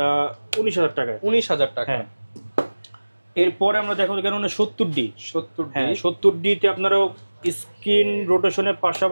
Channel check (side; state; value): both; inverted; correlation -1.00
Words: 19,000 টাকায়। 19,000 টাকা। হ্যাঁ, এরপরে আমরা দেখাবো কেন 70D। হ্যাঁ, 70D-তে আপনারাও স্ক্রিন রোটেশনের